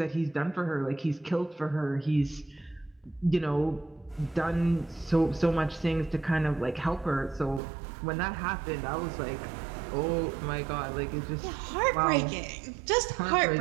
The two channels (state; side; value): drops out; left; at 7.6 s